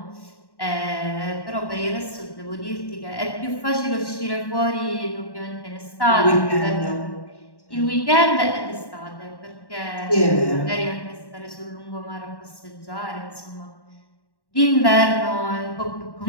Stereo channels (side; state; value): right; late; 1.1 ms